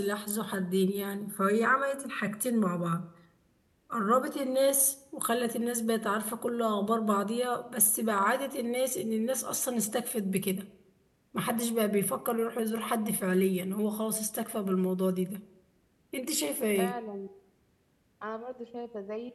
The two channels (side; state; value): both; identical; correlation 1.00